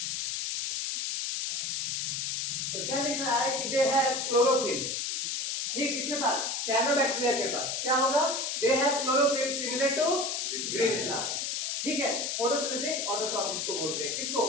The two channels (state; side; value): noise; left; hiss, 1 dB below the sound